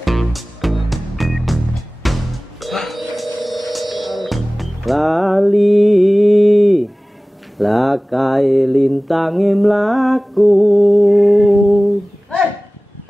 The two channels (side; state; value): both; normal; correlation 0.98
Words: Lali lakai lintange mlaku.